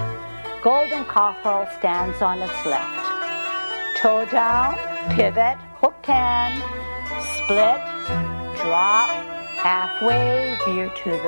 golden cockerel stands on its left. Toe down, pivot, hooked hand, split, drop, halfway, veer to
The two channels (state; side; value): inverted; both; correlation -1.00